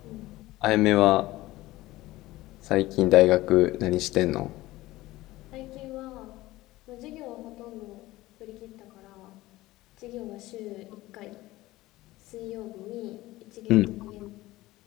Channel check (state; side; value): quieter; right; 17.8 dB